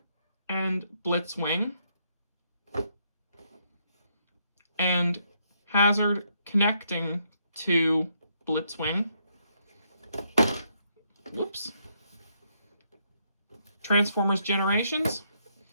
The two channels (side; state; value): both; inverted; correlation -0.75